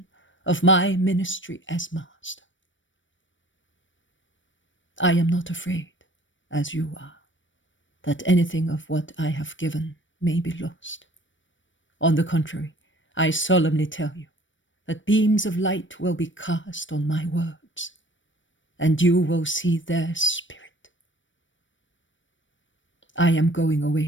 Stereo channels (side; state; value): right; late; 0.56 ms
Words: of my ministry as master. I am not afraid, as you are, that anything of what I have given may be lost. On the contrary, I solemnly tell you that beams of light will be cast on my words, and you will see their spirit. I am going